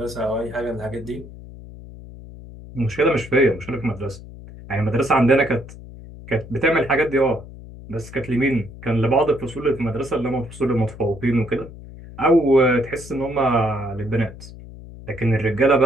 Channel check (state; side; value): noise; left; hum, 16 dB below the sound